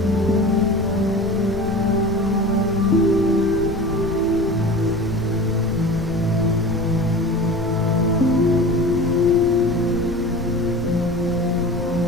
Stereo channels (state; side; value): noise; left; rumble, 10 dB below the sound